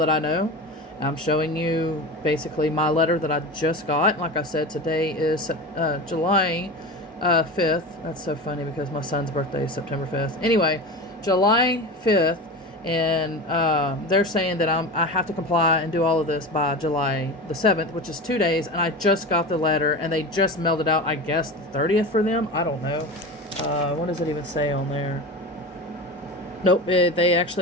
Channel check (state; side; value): normal; both; correlation 0.28